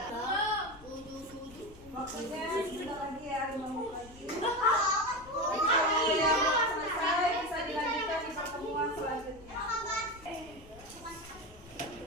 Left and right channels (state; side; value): noise; left; rumble, 21 dB below the sound